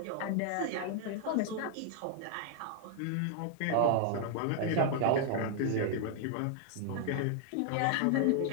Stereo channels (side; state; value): both; different; correlation 0.00